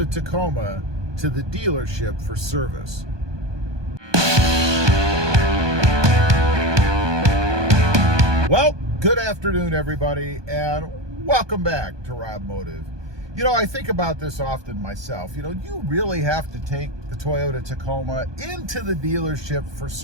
Tacoma to the dealership for service? Well, good afternoon, everybody, and welcome back to Robmotive. You know, I think about this often myself. You know, you really have to take the Toyota Tacoma into the dealership for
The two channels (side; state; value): left; late; 1.2 ms